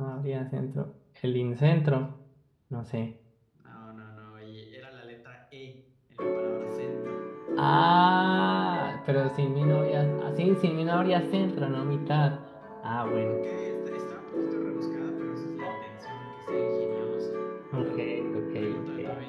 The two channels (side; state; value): both; identical; correlation 1.00